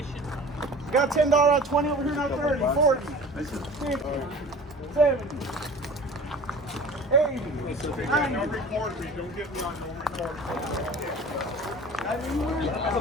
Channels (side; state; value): both; normal; correlation 0.41